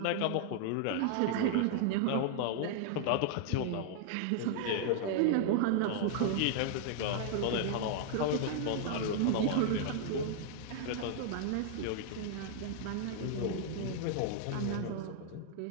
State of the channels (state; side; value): different; both; correlation 0.00